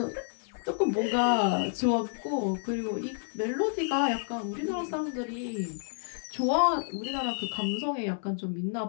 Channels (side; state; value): right; silent; digital silence